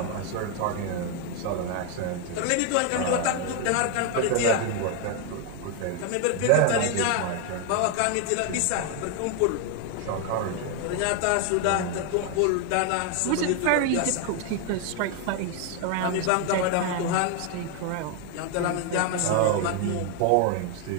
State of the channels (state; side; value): different; both; correlation 0.01